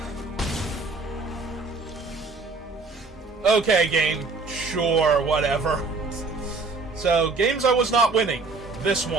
Okay, game. Sure, whatever. So, games I was not winning. This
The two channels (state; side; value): quieter; left; 3.9 dB